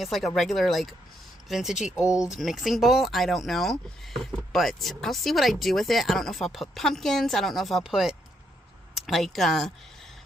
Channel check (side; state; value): both; normal; correlation 0.76